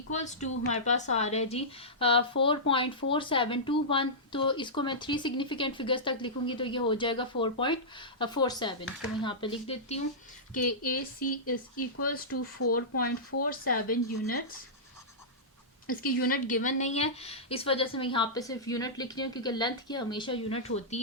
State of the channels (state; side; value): normal; both; correlation -0.15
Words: to हमारे पास आ रहा है जी 4.4721। तो इसको मैं 3 सिग्निफिकेंट फिगर्स तक लिखूंगी तो ये हो जाएगा 4.47। तो मैं यहाँ पे लिख देती हूँ कि AC is equals to 4.47 units. इसकी यूनिट गिवन नहीं है, इस वजह से मैं यहाँ पे सिर्फ यूनिट लिख रही हूँ क्योंकि लेंथ की हमेशा यूनिट होती